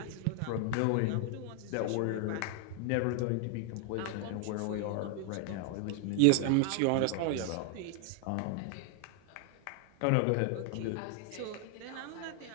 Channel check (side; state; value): both; different; correlation 0.00